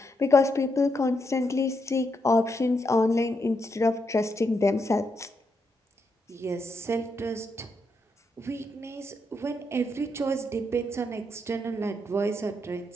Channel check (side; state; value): both; normal; correlation 0.81